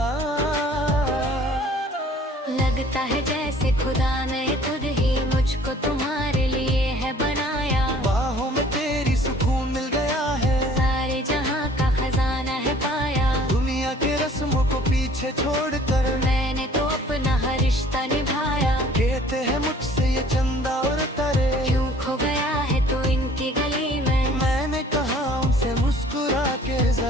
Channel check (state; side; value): normal; both; correlation 0.53